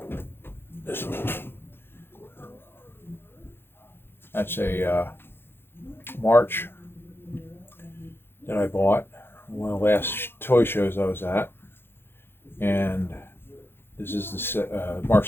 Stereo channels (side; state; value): right; late; 0.11 ms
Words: this one, that's a March that I bought, one of the last toy shows I was at, and this is the